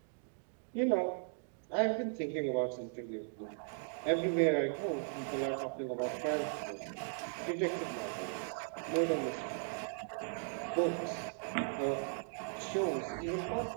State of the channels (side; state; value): left; silent; digital silence